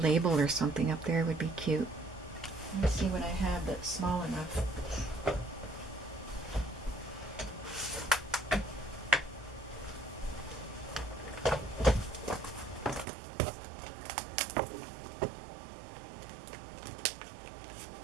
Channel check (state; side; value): drops out; left; at 13.1 s